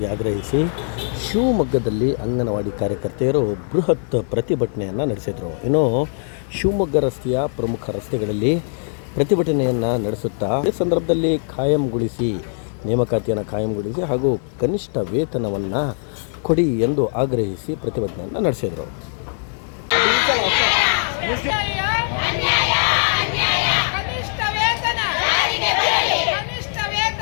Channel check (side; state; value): right; silent; 56 dB below the other